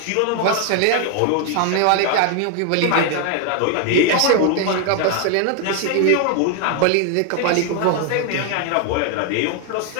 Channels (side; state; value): both; different; correlation 0.01